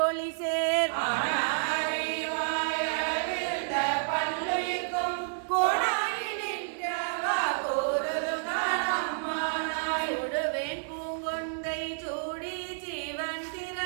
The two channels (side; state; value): left; silent; 58 dB below the other